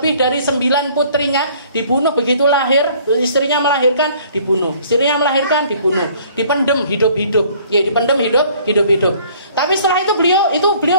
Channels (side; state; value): both; inverted; correlation -0.57